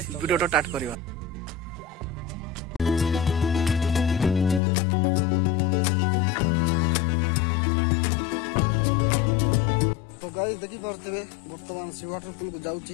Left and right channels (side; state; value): right; drops out; at 4.6 s